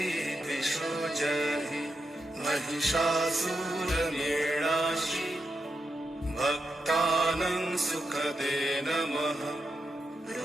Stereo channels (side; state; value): both; normal; correlation 0.85